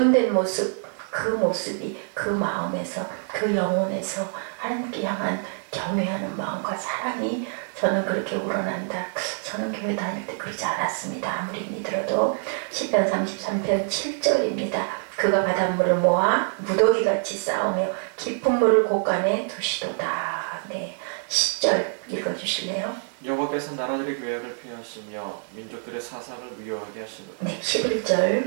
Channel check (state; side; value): silent; left; 61 dB below the other